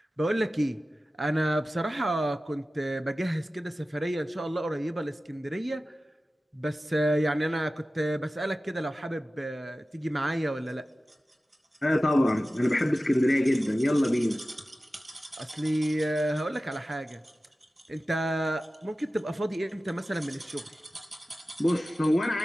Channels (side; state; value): both; normal; correlation 0.95